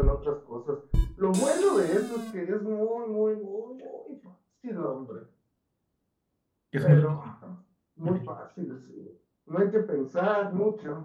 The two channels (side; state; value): both; identical; correlation 1.00